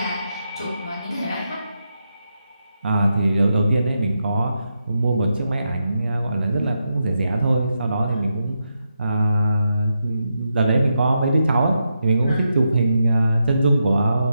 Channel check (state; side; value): inverted; both; correlation -0.85